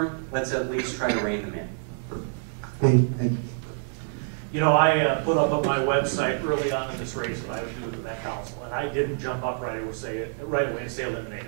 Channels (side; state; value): left; silent; digital silence